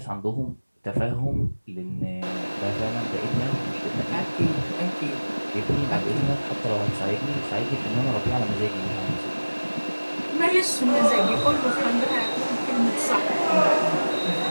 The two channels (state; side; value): inverted; both; correlation -1.00